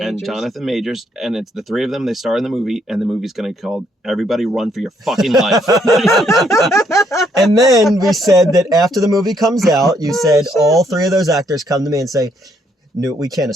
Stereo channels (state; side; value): normal; both; correlation 0.71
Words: Majors, and it's the three of them. They star in the movie, and the movie's going to be called "Everybody Run for Your Fucking Life." And then we said that after the movie comes out, you said all three of those actors come to me and say, "No, we can't